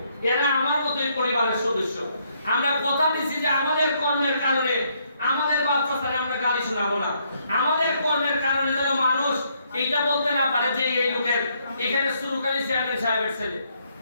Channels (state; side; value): inverted; both; correlation -0.72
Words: এরা আমার মতোই পরিবারের সদস্য আমরা কথা দিছি যে আমাদের কর্মের কারণে আমাদের বাচ্চাদের আমরা গালি শোনাবো না আমাদের কর্মের কারণে যেন মানুষ এইটা বলতে না পারে যে এই লোকের এখানে সুরকারি চেয়ারম্যান সাহেবের ছেলে